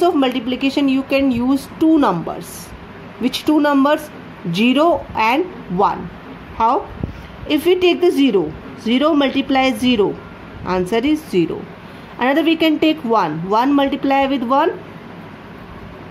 of multiplication, you can use two numbers. Which two numbers? 0 and 1. How? If we take the 0, 0 multiplies 0, answer is 0. Another we can take 1, 1 multiply with 1,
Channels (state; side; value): identical; both; correlation 1.00